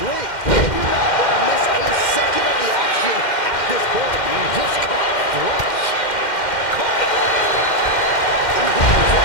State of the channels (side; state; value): right; late; 2.1 ms